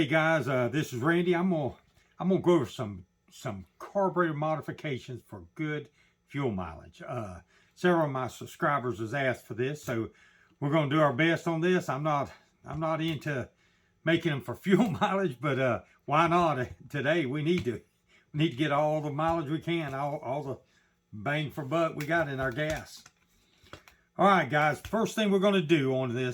guys, this is Randy. I'm gonna go over some carburetor modifications for good fuel mileage. Several of my subscribers has asked for this, so we're gonna do our best on this. I'm not into making them for fuel mileage, but why not? Today we need to get all the mileage we can, all the bang for buck we got in our gas. All right, guys, first thing we're going to do on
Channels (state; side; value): identical; both; correlation 1.00